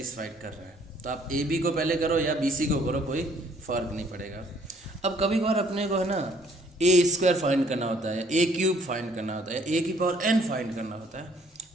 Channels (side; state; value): both; normal; correlation 0.62